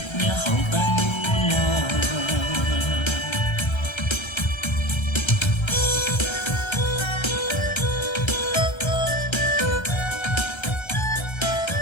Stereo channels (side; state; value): right; late; 1.3 ms